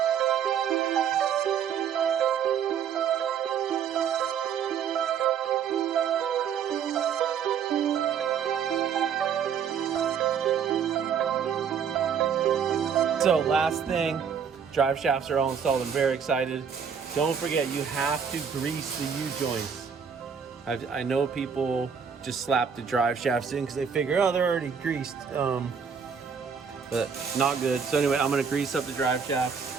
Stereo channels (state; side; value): quieter; left; 7.1 dB